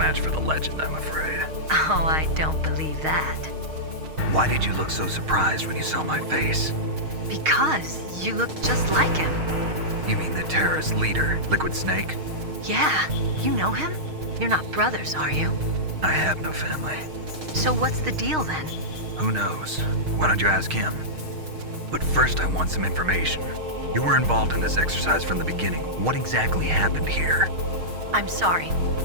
for the legend, I'm afraid. Oh, I don't believe that. Why did you look so surprised when you saw my face? Because you look just like him. You mean the terrorist leader, Liquid Snake? Yeah, you know him? You're not brothers, are you? I have no family. So what's the deal then? Who knows? Why don't you ask him? But first I want some information. You were involved in this exercise from the beginning. What exactly happened here? I'm sorry.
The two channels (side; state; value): left; late; 6.4 ms